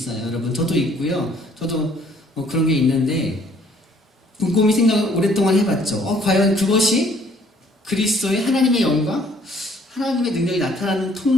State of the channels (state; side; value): normal; both; correlation 0.61